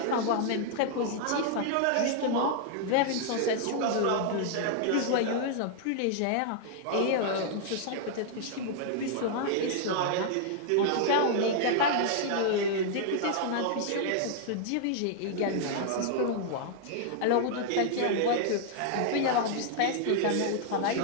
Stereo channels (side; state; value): both; different; correlation 0.00